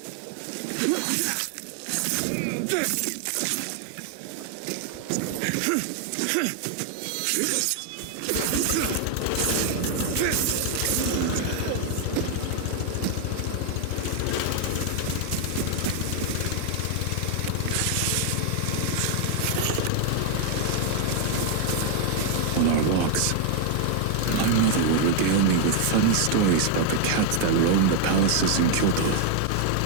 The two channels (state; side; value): different; both; correlation 0.00